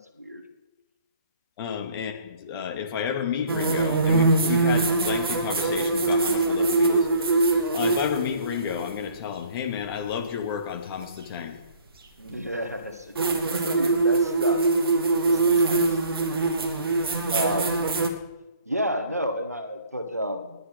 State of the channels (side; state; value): both; inverted; correlation -0.56